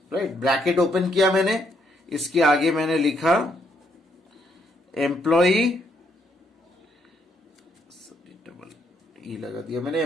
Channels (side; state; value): both; normal; correlation 0.73